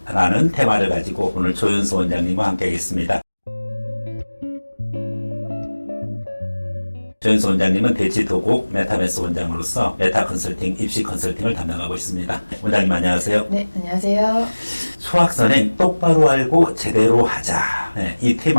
라는 테마를 가지고 오늘 조윤수 원장님과 함께 하겠습니다. 조윤수 원장님은 대치도곡 메타메스 원장으로서 메타 컨설팅, 입시 컨설팅을 담당하고 있습니다. 원장님 안녕하세요. 네, 안녕하세요. 수학 선행 똑바로 알고 제대로 하자. 네, 이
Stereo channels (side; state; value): both; inverted; correlation -1.00